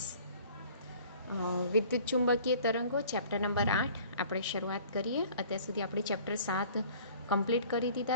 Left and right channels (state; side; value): inverted; both; correlation -0.50